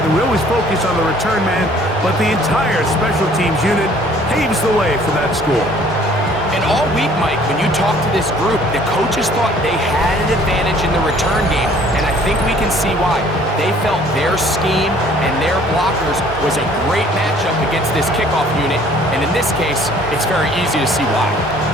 We always focus on the return man, but the entire special teams unit paves the way for that score. And all week, Mike, when you talk to this group, the coaches thought they had an advantage in the return game, and I think we can see why. They felt their scheme and their blockers was a great matchup against this kickoff unit, and in this case, it's very easy to see why.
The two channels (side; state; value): both; normal; correlation 0.56